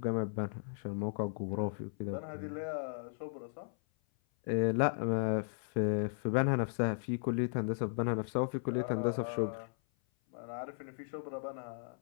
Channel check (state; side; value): silent; right; 54 dB below the other